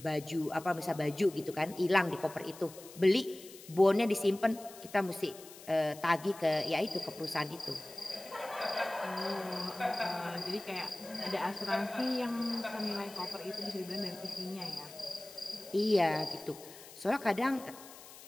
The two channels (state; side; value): noise; left; hiss, 17 dB below the sound